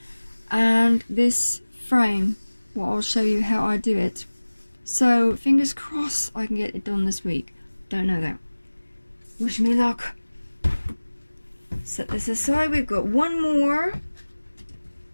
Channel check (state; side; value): inverted; both; correlation -1.00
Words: And this frame, well, I'll show you how I do it. So fingers crossed I can get it done this week. Don't know though. Wish me luck. Set this aside. We've got one more,